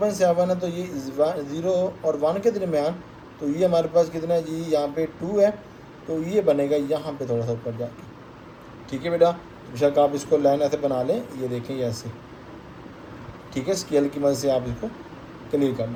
है, तो ये 0 और 1 के दरमियान, तो ये हमारे पास कितना है जी, यहाँ पे 2 है, तो ये बनेगा यहाँ पे थोड़ा सा ऊपर जाके। ठीक है बेटा, बेशक आप इसको लाइन ऐसे बना लें, ये देखें ये ऐसे। ठीक है, स्केल की मदद से आप इसको क्लियर कर लें।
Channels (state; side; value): identical; both; correlation 1.00